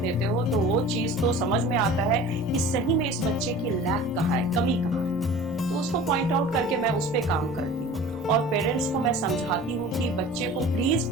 हो तो वो चीज तो समझ में आता है कि सही में इस बच्चे की लैक कहाँ है, कमी कहाँ है, तो उसको पॉइंट आउट करके मैं उस पर काम करती हूँ। और पेरेंट्स को मैं समझाती हूँ कि बच्चे को प्लीज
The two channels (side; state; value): left; noise; rumble, 21 dB below the sound